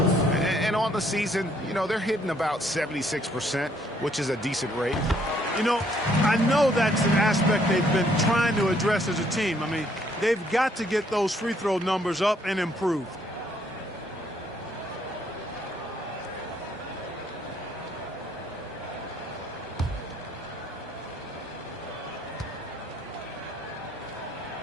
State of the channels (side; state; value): both; normal; correlation 0.67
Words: on the season, you know, they're hitting about 76%, which is a decent rate. You know, I know that's an aspect they've been trying to address as a team. I mean, they've got to get those free throw numbers up and improved.